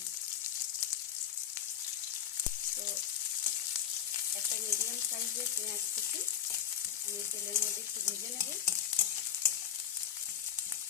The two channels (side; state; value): right; quieter; 9.6 dB